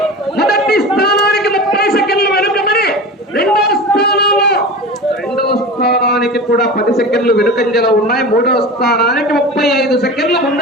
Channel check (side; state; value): both; normal; correlation 0.31